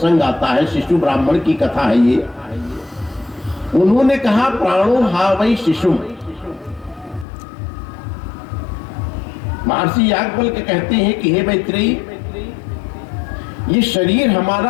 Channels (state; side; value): drops out; right; at 7.2 s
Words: आता है, शिशु ब्राह्मण की कथा है ये। उन्होंने कहा, प्राणो हा वै शिशु। महर्षि याज्ञवल्क्य कहते हैं कि हे मैत्रेयी, ये शरीर